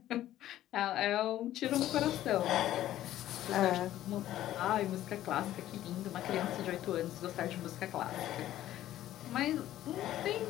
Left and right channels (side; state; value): right; quieter; 13.3 dB